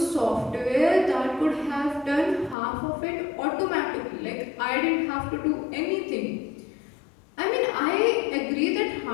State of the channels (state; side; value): drops out; right; at 2.6 s